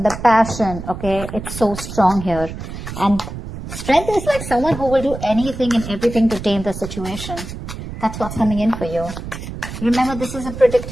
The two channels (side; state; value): right; noise; rumble, 9 dB below the sound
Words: the passion, okay? It's so strong here. And Strength is like someone who will do anything and everything to tame the situation. That's what's coming in for you. Remember, this is a